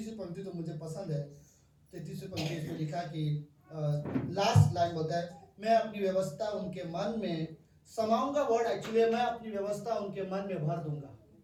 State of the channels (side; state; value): both; identical; correlation 1.00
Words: पंक्ति तो मुझे पसंद है। 33वीं पंक्ति इसमें लिखा कि लास्ट लाइन होता है, मैं अपनी व्यवस्था उनके मन में समाऊंगा। वर्ड एक्चुअली मैं अपनी व्यवस्था उनके मन में भर दूंगा,